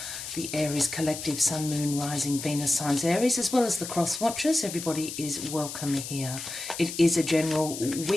the Aries collective, Sun, Moon, Rising, Venus signs Aries, as well as the cross watchers. Everybody is welcome here. It is a general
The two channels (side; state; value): left; noise; hiss, 8 dB below the sound